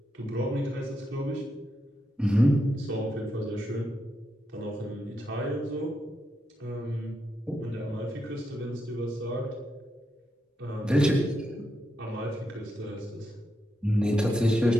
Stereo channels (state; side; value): normal; both; correlation 0.84